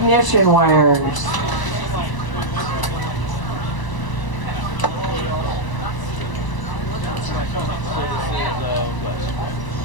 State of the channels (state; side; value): late; right; 1.0 ms